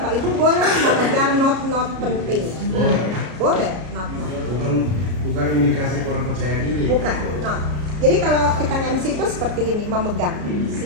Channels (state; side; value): late; left; 33 ms